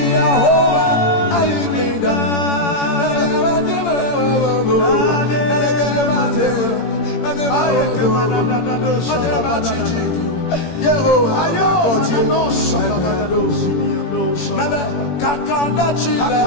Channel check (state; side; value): late; right; 17 ms